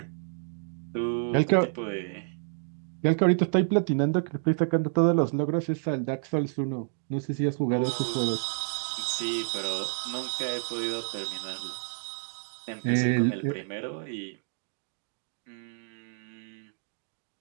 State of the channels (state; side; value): silent; left; digital silence